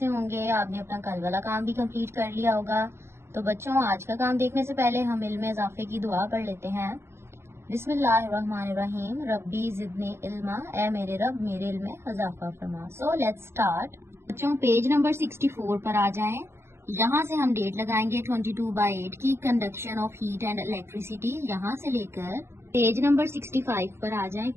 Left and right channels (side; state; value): left; late; 0.12 ms